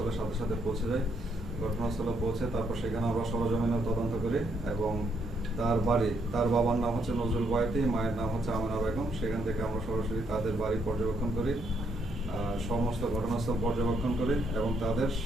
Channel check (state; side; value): normal; both; correlation 0.73